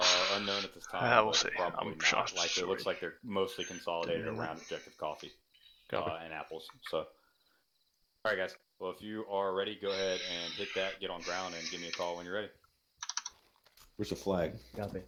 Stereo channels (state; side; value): identical; both; correlation 1.00